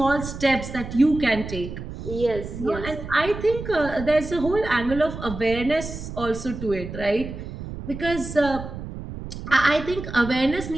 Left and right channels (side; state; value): right; noise; rumble, 9 dB below the sound